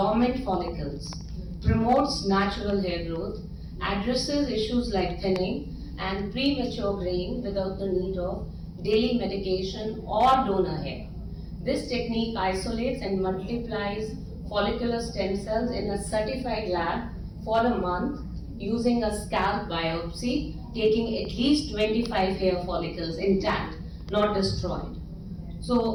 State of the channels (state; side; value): identical; both; correlation 1.00